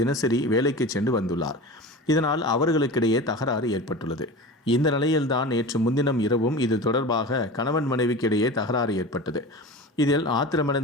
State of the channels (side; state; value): both; normal; correlation 0.32